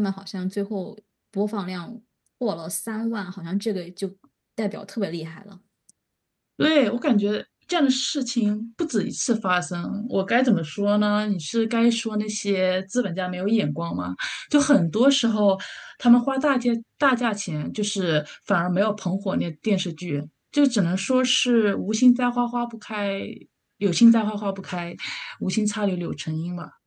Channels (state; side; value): identical; both; correlation 1.00